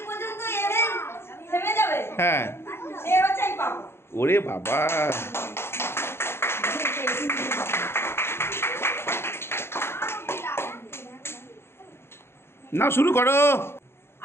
পর্যন্ত এনে থেমে যাবে, হ্যাঁ, সে হচ্ছে এই পাবো। ওরে বাবা, না শুরু করো।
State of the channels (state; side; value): late; right; 0.12 ms